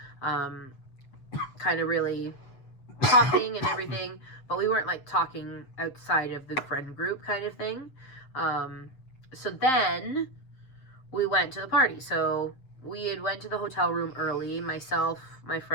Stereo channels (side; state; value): right; late; 7.8 ms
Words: kind of really talking and everything, but we weren't, like, talking outside of the friend group kind of thing. So then we went to the party. So we had went to the hotel room early, myself, my